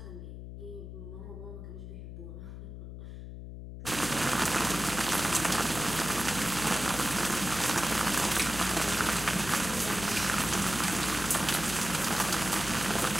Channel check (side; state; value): left; noise; hum, 10 dB below the sound